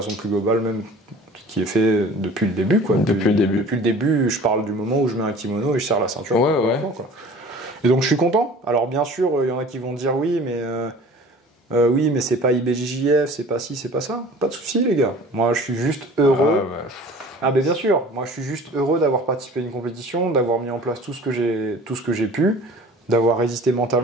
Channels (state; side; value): normal; both; correlation 0.45